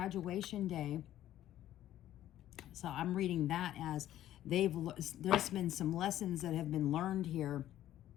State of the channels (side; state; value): right; quieter; 12.8 dB